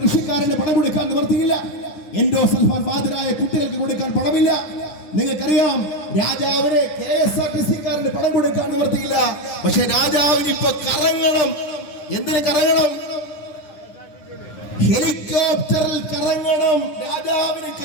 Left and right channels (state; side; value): late; right; 9.9 ms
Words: കൃഷിക്കാരന് പണം കൊടുക്കാൻ നിവർത്തിയില്ല. എൻഡോസൾഫാൻ ബാധിതരായ കുട്ടികൾക്ക് കൊടുക്കാൻ പണമില്ല. നിങ്ങൾക്കറിയാം, രാജാവിന് KSRTC-കാരന് പണം കൊടുക്കാൻ നിവർത്തിയില്ല. പക്ഷെ രാജാവിന് ഇപ്പൊ കറങ്ങണം. എന്തിന് കറങ്ങണം? ഹെലികോപ്റ്ററിൽ കറങ്ങണം. രാജാവിന്